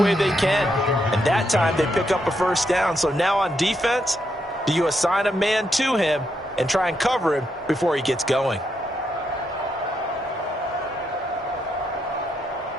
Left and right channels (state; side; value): normal; both; correlation 0.80